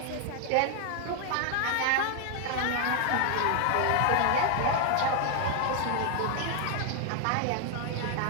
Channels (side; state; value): both; different; correlation 0.00